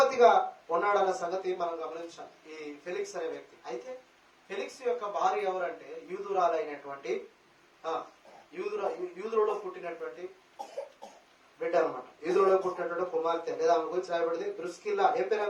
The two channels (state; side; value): identical; both; correlation 1.00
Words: ఉన్నాడన్న సంగతి మనం గమనించాలి, ఈ ఫెలిక్స్ అనే వ్యక్తి. అయితే ఫెలిక్స్ యొక్క భార్య ఎవరంటే యూదురాలైనటువంటి యూదులో పుట్టినటువంటి బిడ్డ అనమాట. యూదులో పుట్టినటువంటి కుమార్తె, లేదా ఆమె గురించి రాయబడింది ద్రుస్కిల్లా. ఏం